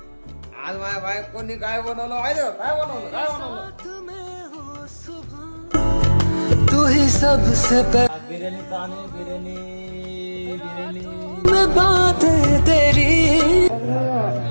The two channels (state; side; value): inverted; both; correlation -1.00